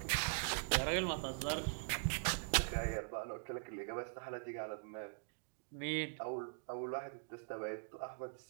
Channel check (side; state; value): left; silent; digital silence